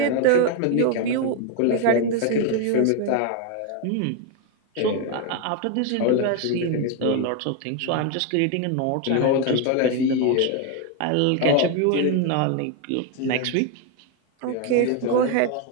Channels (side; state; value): both; different; correlation 0.01